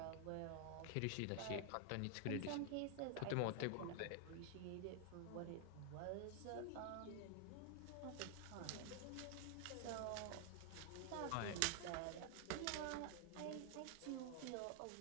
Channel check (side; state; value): both; different; correlation 0.00